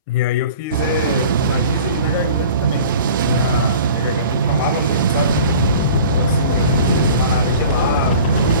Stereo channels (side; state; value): both; inverted; correlation -0.43